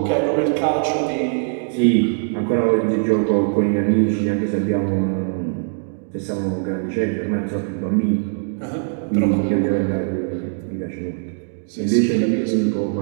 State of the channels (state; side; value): silent; left; digital silence